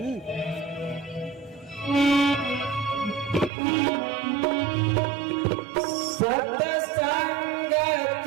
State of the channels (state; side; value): drops out; left; at 3.5 s